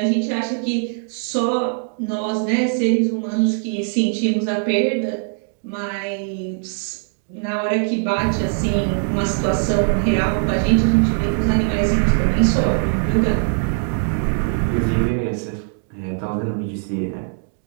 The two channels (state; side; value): silent; left; 60 dB below the other